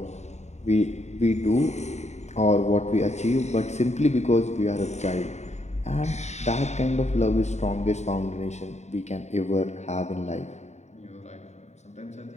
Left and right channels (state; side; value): late; right; 0.33 ms